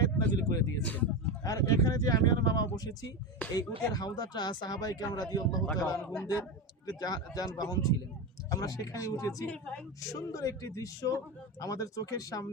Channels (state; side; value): normal; both; correlation 0.17